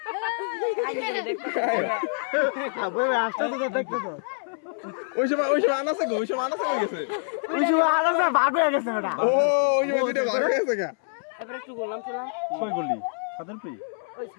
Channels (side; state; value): right; silent; 61 dB below the other